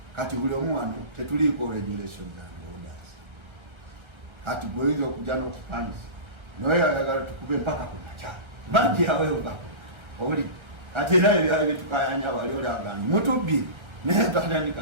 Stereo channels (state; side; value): late; left; 1.3 ms